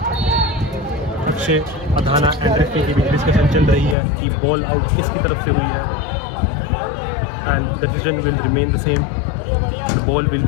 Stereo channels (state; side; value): drops out; right; at 4.0 s